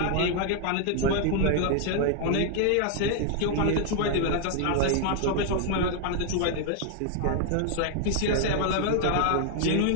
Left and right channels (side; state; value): both; different; correlation 0.00